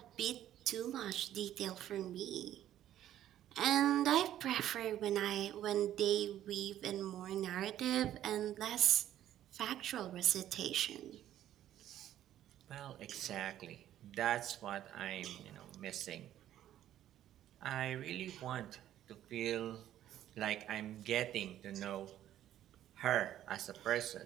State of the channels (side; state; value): left; quieter; 12.0 dB